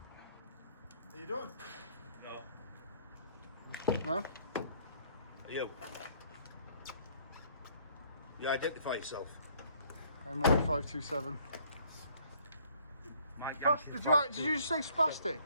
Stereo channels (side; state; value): both; inverted; correlation -0.61